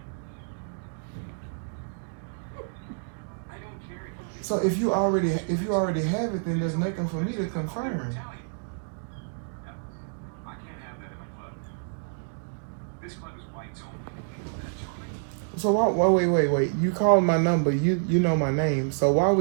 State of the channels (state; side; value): silent; left; digital silence